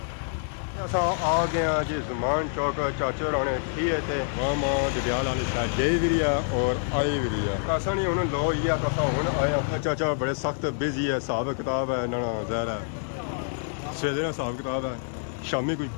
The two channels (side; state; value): right; silent; digital silence